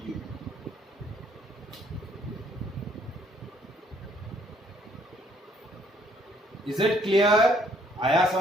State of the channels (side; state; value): both; normal; correlation 0.65